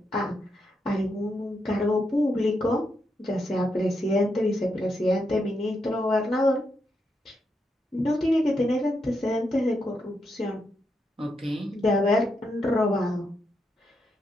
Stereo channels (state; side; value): normal; both; correlation 0.82